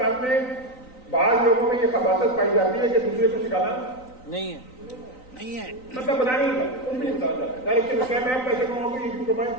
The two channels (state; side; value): late; right; 3.9 ms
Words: में बाहर लोगों में ये खबासत पाई जाती है कि दूसरे को सिखाना नहीं है। नहीं है। मतलब बता नहीं था, कुछ भी नहीं बताया जाता। डायरेक्शन क्या मैं पैसे कमाऊंगी, ये क्यों कमाए?